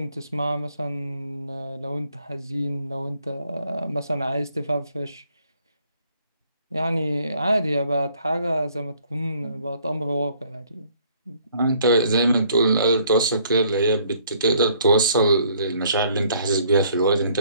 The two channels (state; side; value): inverted; both; correlation -0.63